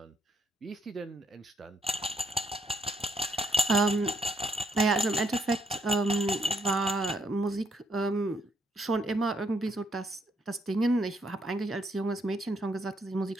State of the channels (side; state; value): both; normal; correlation 0.73